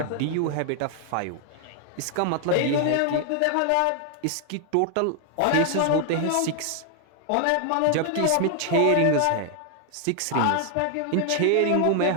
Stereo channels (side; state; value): both; different; correlation 0.00